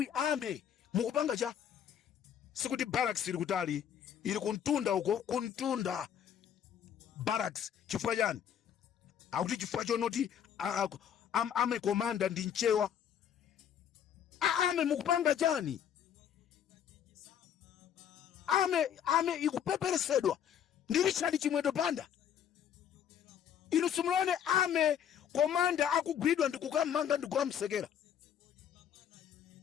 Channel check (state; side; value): quieter; right; 9.1 dB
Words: ame mukupanga cha sikuti barracks ili kutali ili kuntunda uko kuntunda barracks chifukwa chani akuti chifukwa chonoti ame komanda ndi nchewa ame mukupanga chani ame ikupeperesedwa ndi Richard Chimwedo Banda inu simulone ame komanda akugwidwa ndikukamanga ndikukamsekera